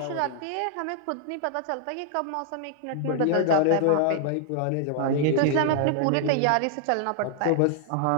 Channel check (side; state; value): both; different; correlation -0.01